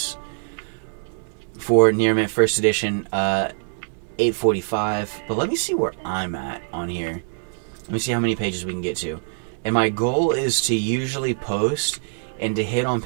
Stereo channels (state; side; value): silent; left; digital silence